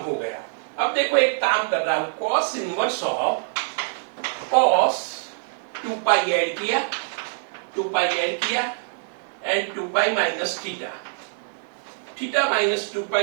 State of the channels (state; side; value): silent; left; digital silence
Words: गया। अब देखो, एक काम कर रहा हूं, cos inverse of cos 2 pi add किया, 2 पाई ऐड किया and 2 pi minus theta, theta minus 2